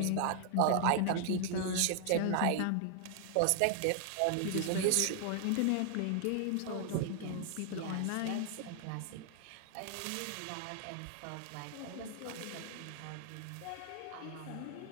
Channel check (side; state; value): both; different; correlation 0.00